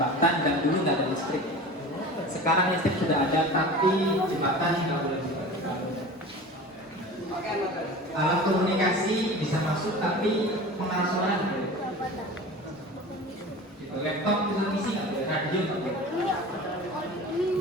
dan dulu nggak ada listrik. Sekarang listrik sudah ada, tapi jembatan nggak boleh. Alat komunikasi bisa masuk, tapi pengarah suara nggak boleh. Gitu. Laptop televisi nggak boleh, radio nggak boleh.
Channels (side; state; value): both; normal; correlation 0.36